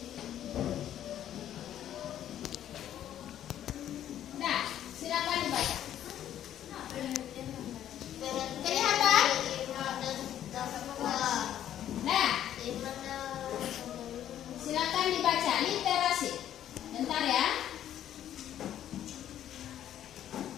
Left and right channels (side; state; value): right; quieter; 11.1 dB